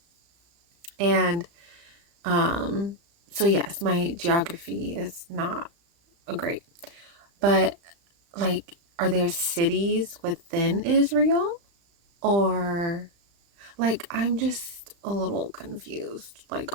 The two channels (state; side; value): late; left; 35 ms